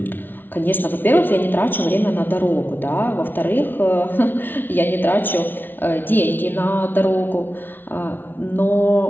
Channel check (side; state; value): right; late; 0.095 ms